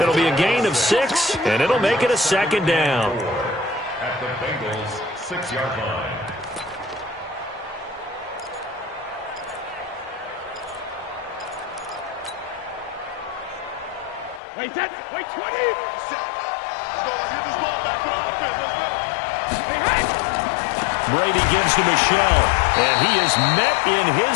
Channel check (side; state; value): right; drops out; at 14.4 s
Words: be a gain of 6, and it'll make it a 2nd down. At the Bengals' 6-yard line. Wait, set. Wait, 20. Let's go. Let's get this ball back to the offense. Let's go. Hey, hey. Brady gives to Michelle, and he is met in